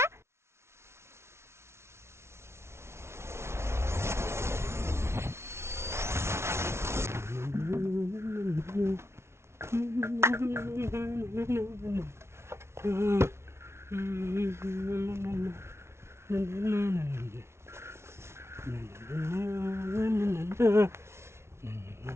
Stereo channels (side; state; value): left; late; 0.13 ms